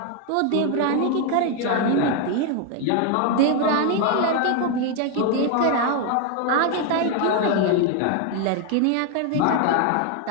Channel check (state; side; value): different; both; correlation 0.01